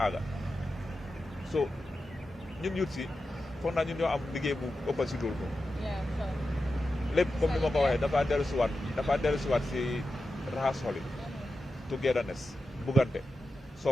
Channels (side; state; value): both; normal; correlation 0.91